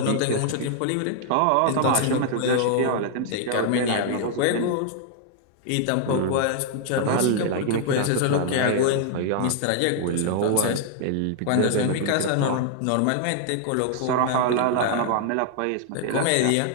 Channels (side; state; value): both; different; correlation 0.00